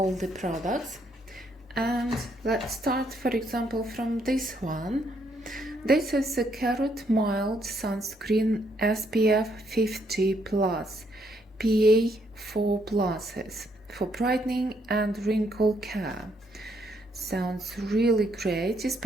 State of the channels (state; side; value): normal; both; correlation 0.72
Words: the products, and let's start, for example, from this one. This is a Carrot Mild Sunscreen SPF 50+, PA4+, for brightening and wrinkle care. Sounds really great,